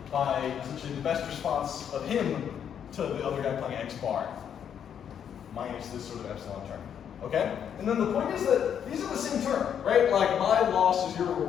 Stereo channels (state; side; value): quieter; right; 8.6 dB